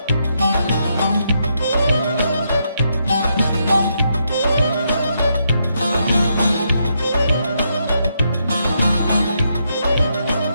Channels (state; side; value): inverted; both; correlation -0.79